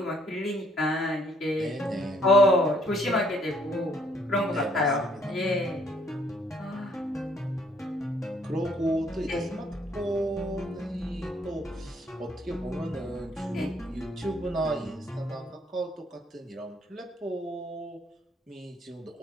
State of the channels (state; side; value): normal; both; correlation 0.66